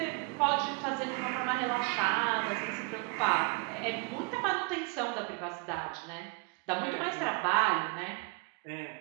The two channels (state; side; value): quieter; left; 29.9 dB